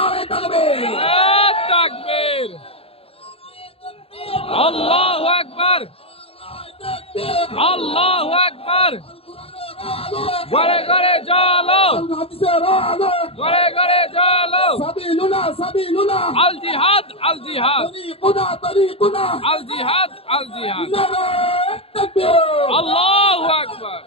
তাকবীর, তাকবীর, আল্লাহু আকবার, আল্লাহু আকবার। ঘরে ঘরে চলো, ঘরে ঘরে চলো। সাবিলুনা সাবিলুনা, আল জিহাদ, আল জিহাদ, তরিকুনা তরিকুনা, আল জিহাদ, আল জিহাদ। নারে তাকবীর, আল্লাহু আকবার।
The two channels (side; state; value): right; late; 0.28 ms